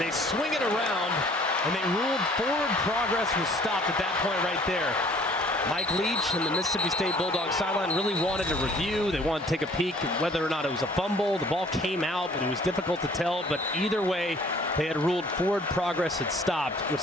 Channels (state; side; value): normal; both; correlation 0.55